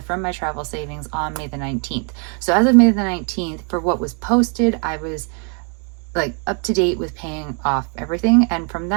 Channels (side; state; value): left; quieter; 39.2 dB